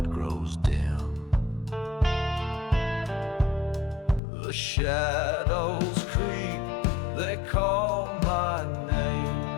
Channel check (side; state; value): right; drops out; at 4.2 s